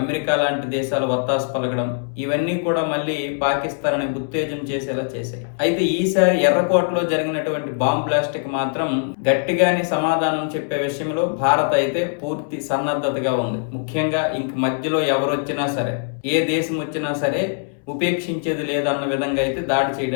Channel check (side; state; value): right; silent; 65 dB below the other